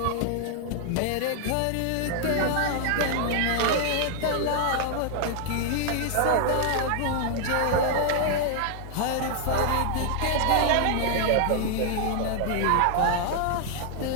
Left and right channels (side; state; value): both; different; correlation 0.00